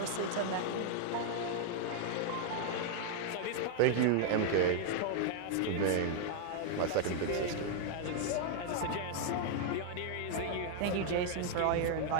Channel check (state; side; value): different; both; correlation 0.00